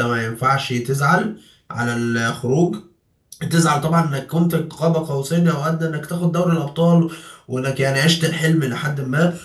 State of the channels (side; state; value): both; identical; correlation 1.00